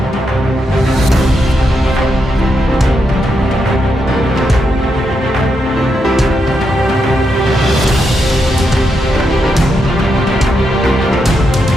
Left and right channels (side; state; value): both; normal; correlation 0.83